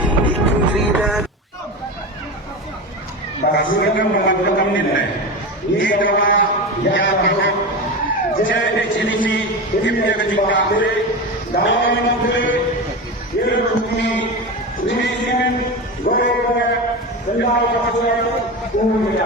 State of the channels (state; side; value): normal; both; correlation 0.23